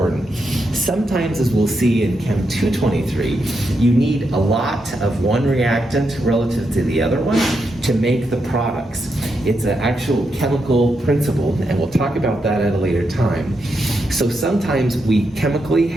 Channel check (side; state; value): both; normal; correlation 0.83